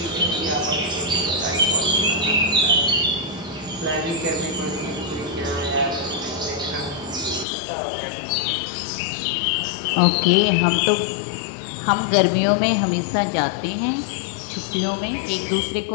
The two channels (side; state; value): right; drops out; at 7.5 s